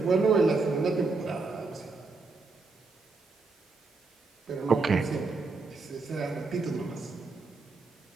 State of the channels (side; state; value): left; quieter; 3.9 dB